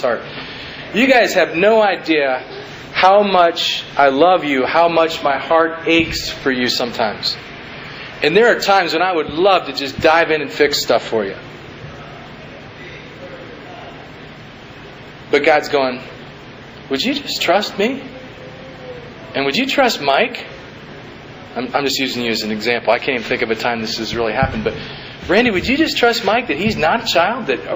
You guys have no idea how much I love you, how much my heart aches for you sometimes. And there are times when I would love to just dive in and fix stuff for you. But God's going, would you just trust me? And would you trust Mike? I'm just using you as an example. I can't even think of a time this has really happened. But Randy, would you just trust Mike that he's not a child?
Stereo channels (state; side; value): identical; both; correlation 1.00